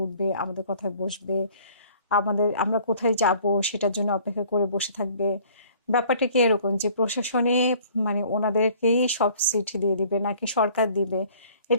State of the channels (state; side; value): inverted; both; correlation -0.54